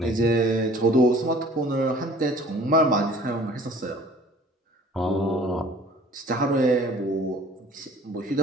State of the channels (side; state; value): both; normal; correlation 0.50